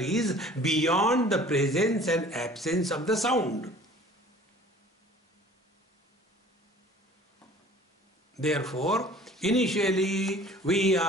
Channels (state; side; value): normal; both; correlation 0.49